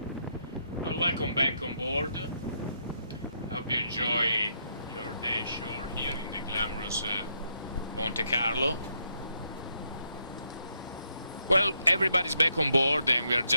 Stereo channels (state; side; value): inverted; both; correlation -0.76